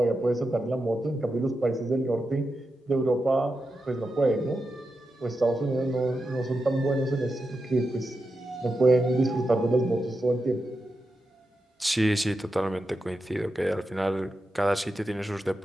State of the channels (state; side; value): normal; both; correlation 0.89